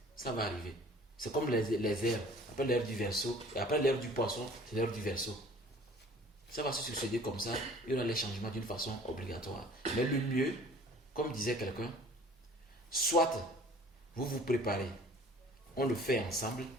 Ça va arriver. C'est comme les airs. Après l'ère du Verseau, et après l'ère du Poisson, c'est l'ère du Verseau. Ça va se succéder comme ça. Il y aura les changements d'une façon obligatoire. Mais le mieux, comme disait quelqu'un, soit vous vous préparez, on le fait ensemble,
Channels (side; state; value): both; normal; correlation 0.49